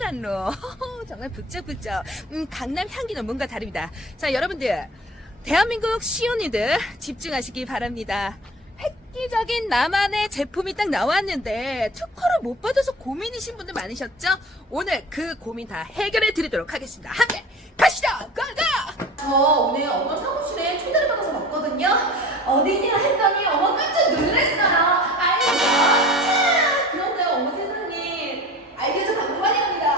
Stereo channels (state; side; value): normal; both; correlation 0.39